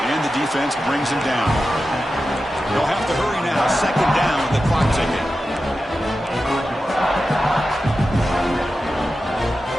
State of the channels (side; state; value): both; normal; correlation 0.92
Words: And the defense brings him down. They'll have to hurry now. 2nd down with the clock ticking.